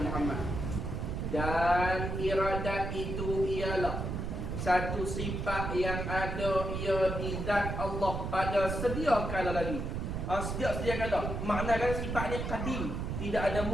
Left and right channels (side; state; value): right; noise; rumble, 3 dB below the sound